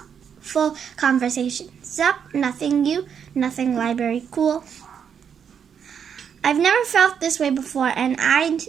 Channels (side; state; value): left; quieter; 7.6 dB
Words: conversation. Sup? Nothing you? Nothing library. Cool. I've never felt this way before, and